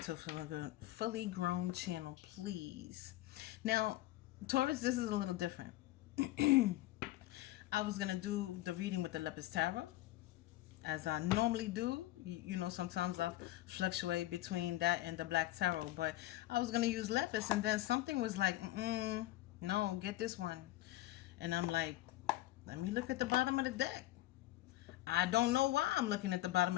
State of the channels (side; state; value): right; quieter; 16.6 dB